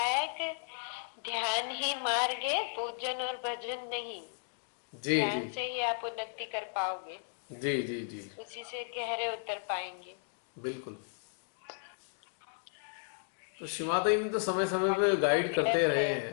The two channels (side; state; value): right; silent; digital silence